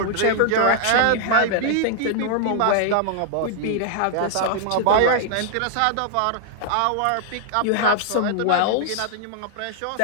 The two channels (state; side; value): different; both; correlation -0.01